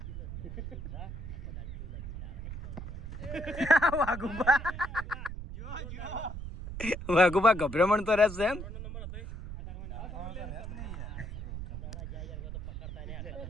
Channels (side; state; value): right; noise; rumble, 7 dB below the sound